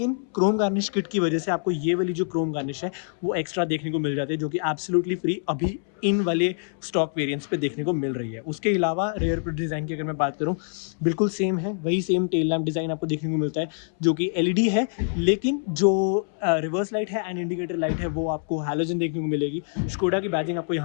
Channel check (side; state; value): right; silent; 61 dB below the other